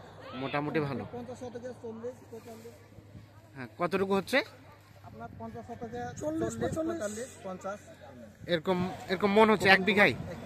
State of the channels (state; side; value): identical; both; correlation 1.00